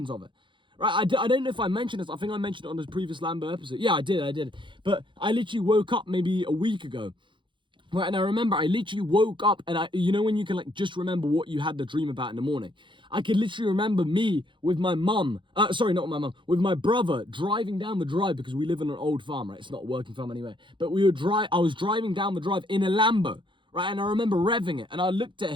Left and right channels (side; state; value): left; late; 0.23 ms